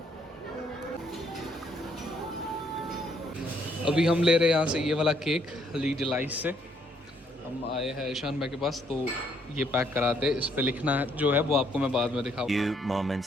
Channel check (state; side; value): normal; both; correlation 0.69